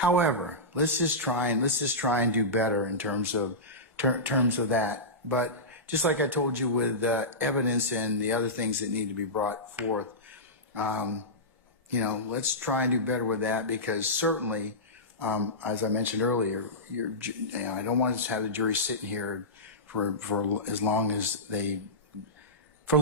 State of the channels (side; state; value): both; normal; correlation -0.16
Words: let's just try and do better in terms of that. But just like I told you with evidence and the other things that need to be brought forth, you know, let's try and do better with that, because certainly, as I mentioned earlier, I don't want to have the jury sitting here for as long as for